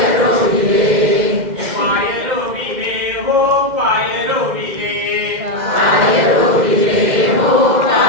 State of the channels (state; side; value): late; left; 2.1 ms